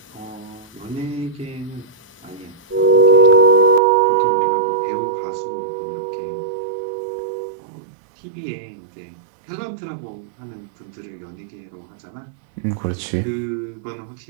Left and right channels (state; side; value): drops out; left; at 3.8 s